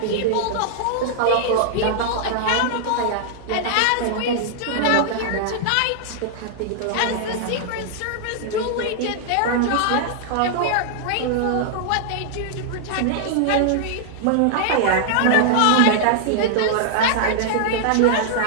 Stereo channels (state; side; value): different; both; correlation -0.01